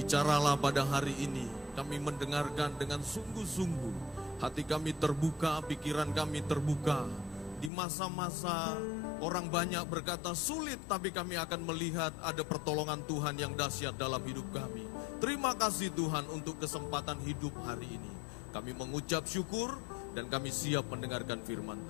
pada hari ini, kami mendengarkan dengan sungguh-sungguh. Hati kami terbuka, pikiran kami terbuka. Di masa-masa orang banyak berkata sulit, tapi kami akan melihat ada pertolongan Tuhan yang dahsyat dalam hidup kami. Terima kasih Tuhan untuk kesempatan hidup hari ini. Kami mengucap syukur dan kami siap mendengarkan firman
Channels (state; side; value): drops out; right; at 7.7 s